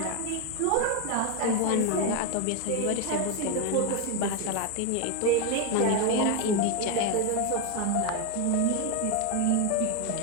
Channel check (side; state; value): both; different; correlation 0.01